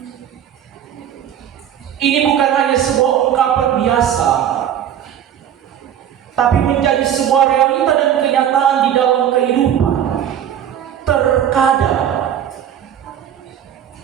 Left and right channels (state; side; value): quieter; left; 9.9 dB